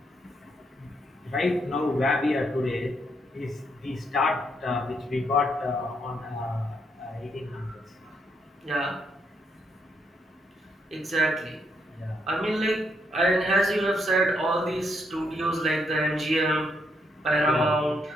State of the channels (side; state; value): both; normal; correlation 0.75